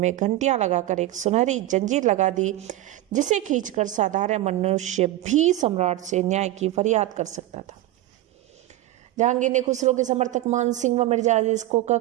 घंटियां लगाकर एक सुनहरी जंजीर लगा दी, जिसे खींचकर साधारण मनुष्य भी सम्राट से न्याय की फरियाद कर सकता था। जहांगीर ने खुसरो के समर्थक मान सिंह व मिर्जा अजीज कोका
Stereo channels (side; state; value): left; quieter; 15.3 dB